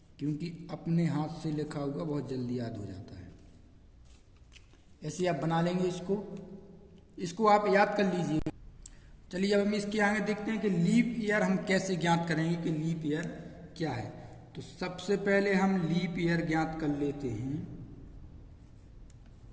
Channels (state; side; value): identical; both; correlation 1.00